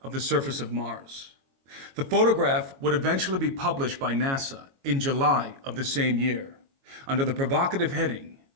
of the surface of Mars. The photograph would eventually be published by NASA in July of the same year, under the provocative heading,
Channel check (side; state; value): left; late; 22 ms